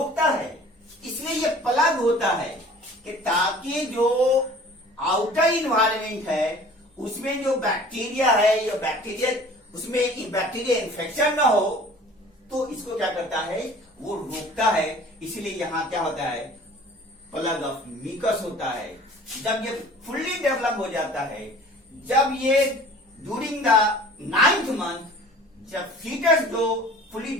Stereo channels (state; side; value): normal; both; correlation 0.47